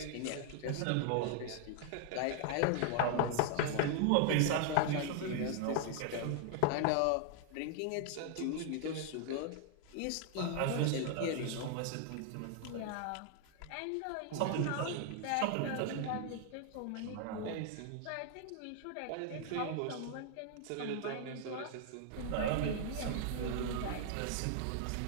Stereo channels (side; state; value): both; different; correlation 0.00